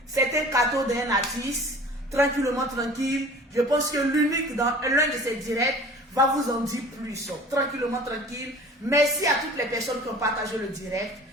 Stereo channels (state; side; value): normal; both; correlation 0.44